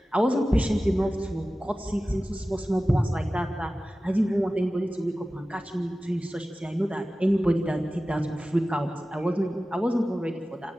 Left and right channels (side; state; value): both; normal; correlation 0.96